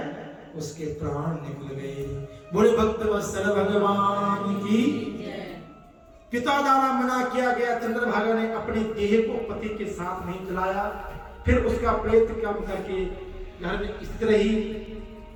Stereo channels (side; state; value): both; identical; correlation 1.00